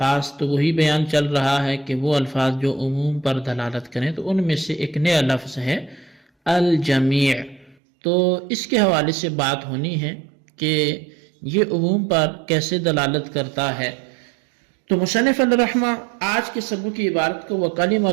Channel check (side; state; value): left; drops out; at 7.8 s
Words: تو وہی بیان چل رہا ہے کہ وہ الفاظ جو عموم پر دلالت کریں، تو ان میں سے ایک نیا لفظ ہے الجمیع۔ تو اس کے حوالے سے بات ہونی ہے کہ یہ عموم پر کیسے دلالت کرتا ہے۔ تو مصنف الرحمہ آج کے سبق کی عبارت کو